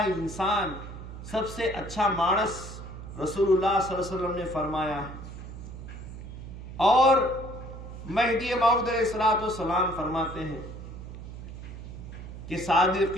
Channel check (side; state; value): right; noise; hum, 11 dB below the sound